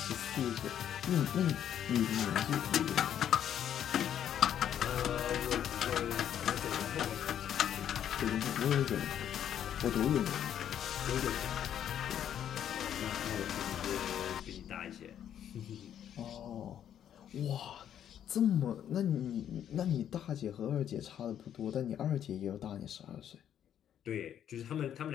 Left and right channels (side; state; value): right; quieter; 9.9 dB